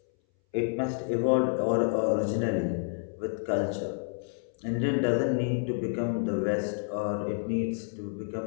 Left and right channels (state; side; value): silent; right; 58 dB below the other